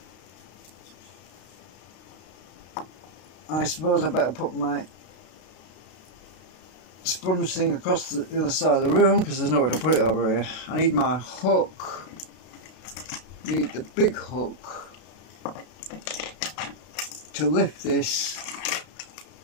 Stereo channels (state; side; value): late; right; 32 ms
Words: I suppose I better put my sponge thing across the other side of the room because there's nowhere to put it over here. I need my hook. Need the big hook to lift this.